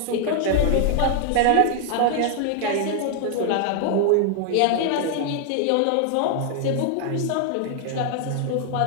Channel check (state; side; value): different; both; correlation 0.00